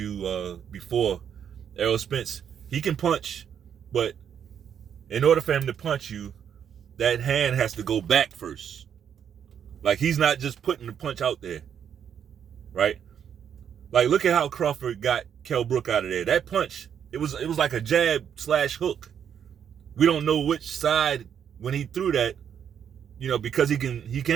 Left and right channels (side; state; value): left; quieter; 8.4 dB